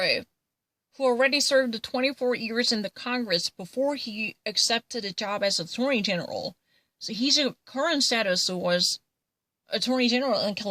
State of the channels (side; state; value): both; identical; correlation 1.00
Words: who already served 24 years in the Congress before he accepted a job as Attorney General. So his current status was Attorney General in